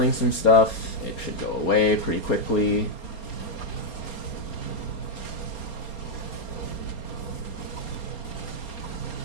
some stuff, it should go away pretty quickly.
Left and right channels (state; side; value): late; right; 4.3 ms